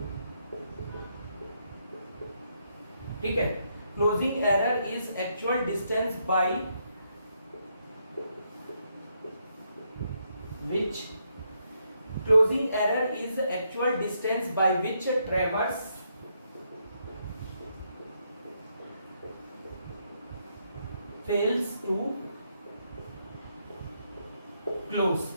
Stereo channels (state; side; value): inverted; both; correlation -0.77